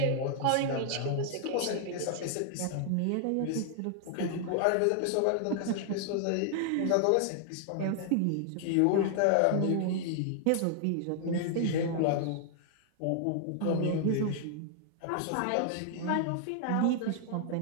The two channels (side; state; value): both; different; correlation 0.00